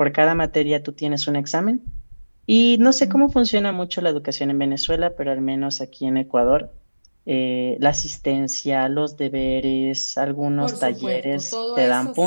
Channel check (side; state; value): both; inverted; correlation -1.00